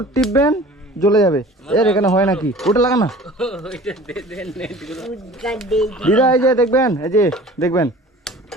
টিপবেন জ্বলে যাবে। এর এখানে হয় নাকি? ওটা লাগা না ওইটা দে দেন উদ্গার দেই। দিদা। এই যে দেখবেন, এই যে দেখবেন,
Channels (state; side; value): normal; both; correlation 0.44